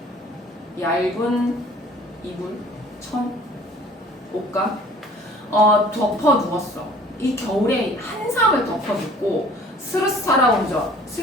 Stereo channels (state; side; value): normal; both; correlation 0.51